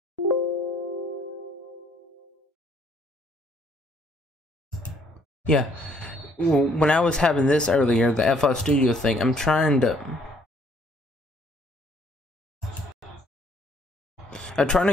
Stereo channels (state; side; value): normal; both; correlation 0.64